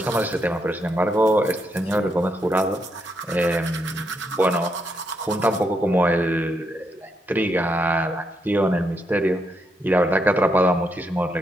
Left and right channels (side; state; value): both; normal; correlation 0.79